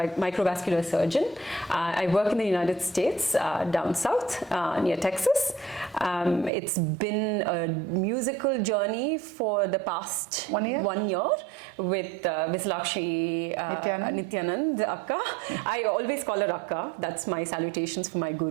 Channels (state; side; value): drops out; left; at 6.5 s